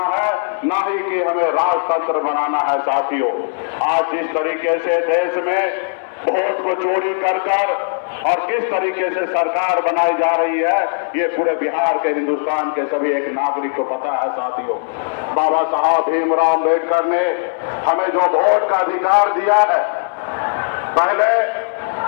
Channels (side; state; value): right; silent; 63 dB below the other